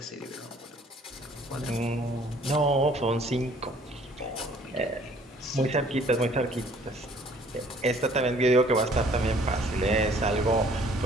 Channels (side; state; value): both; normal; correlation 0.57